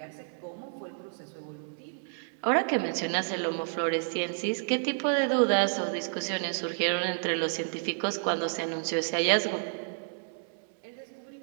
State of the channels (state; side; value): silent; left; digital silence